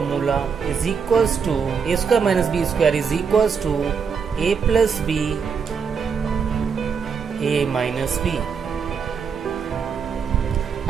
is equals to a square minus b square is equals to a plus b, a minus b.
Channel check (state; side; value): quieter; left; 6.2 dB